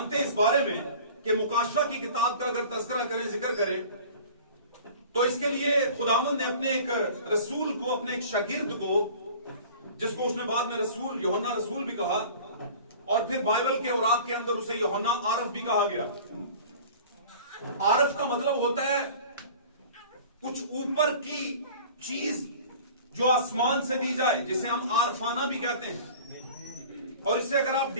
हैं इस बारे में कि मुकाशवा की किताब का अगर तज़किरा करें, जिक्र करें, तो इसके लिए खुदावंद ने अपने एक रसूल को, अपने एक शागिर्द को, जिसको उसने बाद में रसूल, यूहन्ना रसूल भी कहा, और फिर बाइबल के औरात के अंदर उसे यूहन्ना आरफ भी कहा गया। आरफ का मतलब होता है कुछ ऊपर की चीज जो आसमान से दी जाए, जिसे हम आरफाना भी कहते हैं। और इससे अगर आप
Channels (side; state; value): both; inverted; correlation -0.43